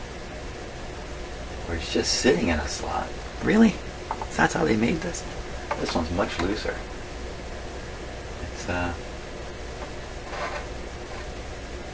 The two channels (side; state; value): both; identical; correlation 1.00